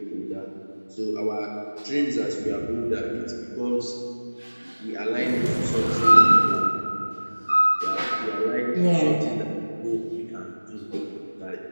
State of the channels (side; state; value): both; inverted; correlation -1.00